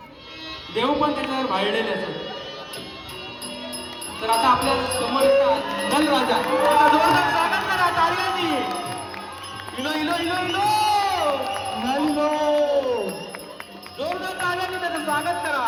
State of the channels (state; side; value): identical; both; correlation 1.00